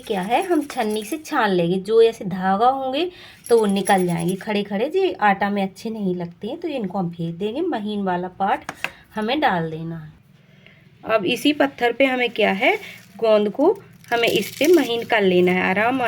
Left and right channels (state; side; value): identical; both; correlation 1.00